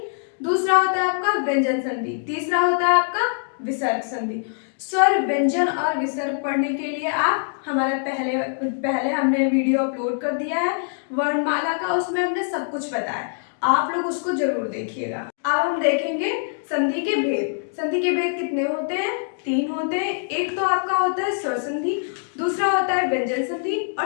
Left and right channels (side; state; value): right; silent; digital silence